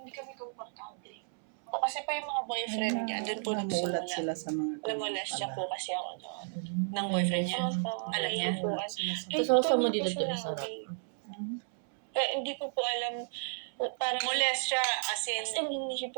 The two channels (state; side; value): silent; left; 56 dB below the other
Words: kami komportable. O kasi pa yung mga boyfriend niya, doon po Namulat nagsimula. sila sa mga Namulas siya po kasi ako doon. Ng boyfriend niya? Opo, Alam niya? Namulat sila sa Eh, Tapos kasama hindi dito ko din sinabi. sarap. Eh, hindi ko po alam. Parang Molest siya, as in,